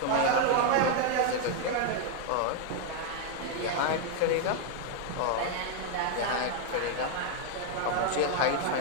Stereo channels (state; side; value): different; both; correlation 0.00